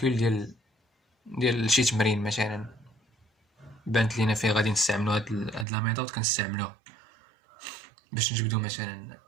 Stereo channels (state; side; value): drops out; left; at 5.7 s